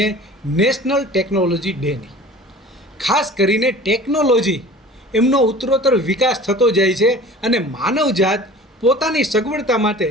નેશનલ ટેકનોલોજી ડેની. ખાસ કરીને ટેકનોલોજી એમનો ઉત્તરોત્તર વિકાસ થતો જાય છે અને માનવજાત પોતાની સગવડતા માટે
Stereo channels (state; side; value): normal; both; correlation 0.43